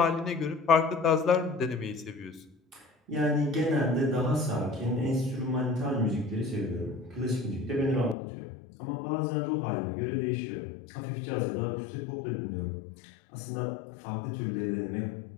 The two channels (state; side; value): drops out; right; at 8.2 s